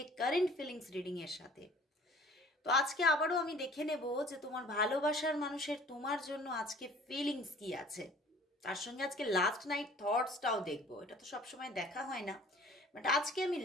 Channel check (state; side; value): normal; both; correlation 0.50